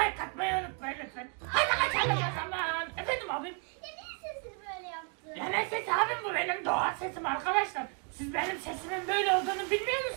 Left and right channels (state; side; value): quieter; left; 38.0 dB